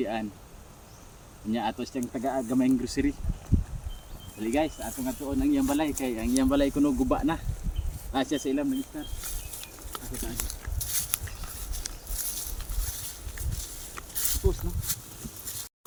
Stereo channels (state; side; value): identical; both; correlation 1.00